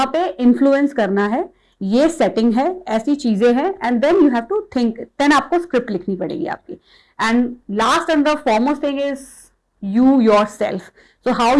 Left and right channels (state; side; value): identical; both; correlation 1.00